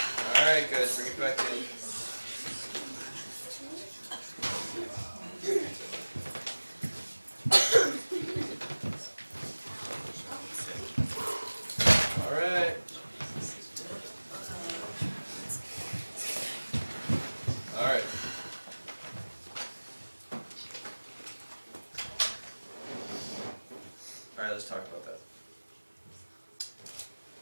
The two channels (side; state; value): both; inverted; correlation -1.00